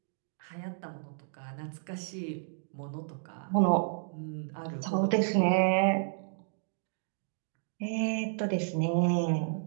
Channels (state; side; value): silent; left; digital silence